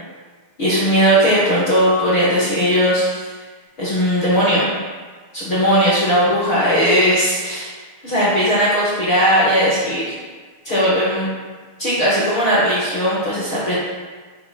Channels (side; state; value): right; late; 6.6 ms